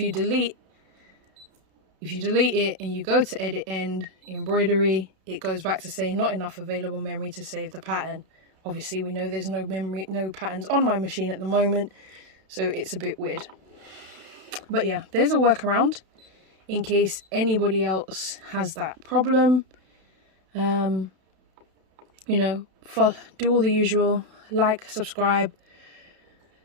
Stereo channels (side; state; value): left; late; 32 ms